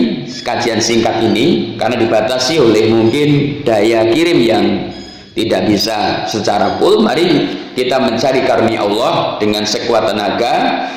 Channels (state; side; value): identical; both; correlation 1.00